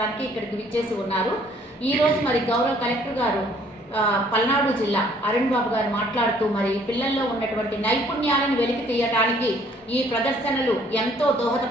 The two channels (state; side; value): normal; both; correlation 0.61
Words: ఇక్కడికి విచ్చేసి ఉన్నారు. ఈరోజు మరి గౌరవ కలెక్టర్ గారు పల్నాడు జిల్లా అరుణ్ బాబు గారు మాట్లాడుతూ మరి పిల్లల్లో ఉన్నటువంటి నైపుణ్యాలను వెలికి తీయడానికి ఈ ప్రదర్శనలు ఎంతో